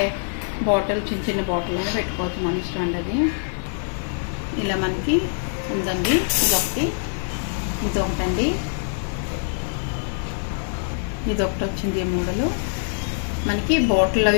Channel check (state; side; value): silent; right; digital silence